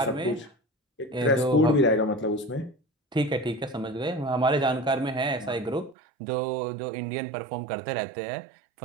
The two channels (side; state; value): left; drops out; at 6.0 s